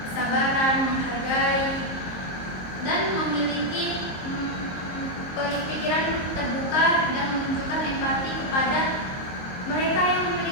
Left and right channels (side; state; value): right; late; 22 ms